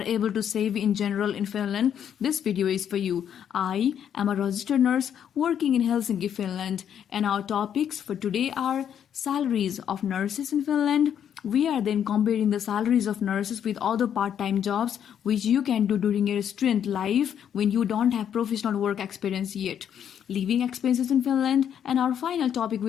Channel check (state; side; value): quieter; right; 9.0 dB